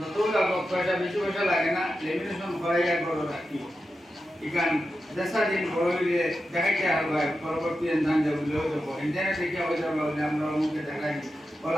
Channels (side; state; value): both; normal; correlation 0.90